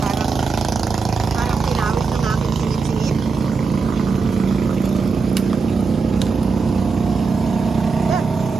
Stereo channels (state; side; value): quieter; left; 4.7 dB